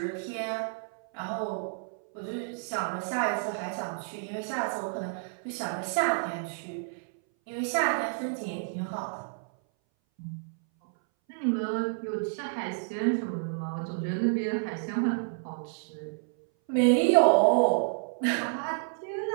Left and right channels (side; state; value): left; silent; 58 dB below the other